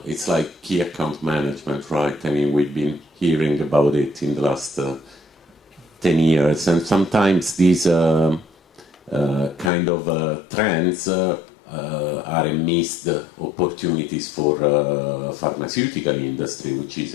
It's like key account management, right? I mean, we've been hearing about it in the last 10 years, and sometimes these kind of trends are missed opportunities for pharmaceutical industry, which is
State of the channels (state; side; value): drops out; right; at 9.7 s